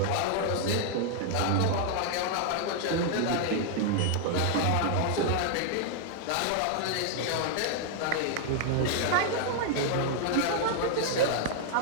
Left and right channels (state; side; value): different; both; correlation 0.00